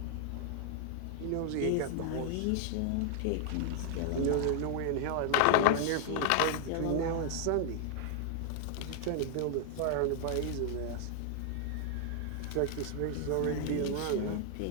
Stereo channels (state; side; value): different; both; correlation 0.00